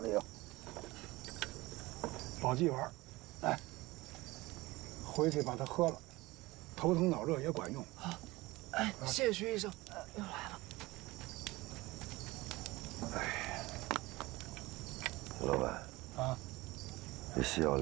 有保济丸，来，回去把它喝了，头疼脑热也管用。好，哎，谢谢徐医生。又来了。哎，徐老板啊，这西药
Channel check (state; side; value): quieter; left; 20.5 dB